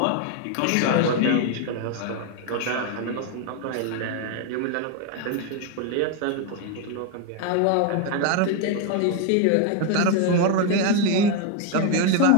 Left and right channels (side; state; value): both; different; correlation 0.01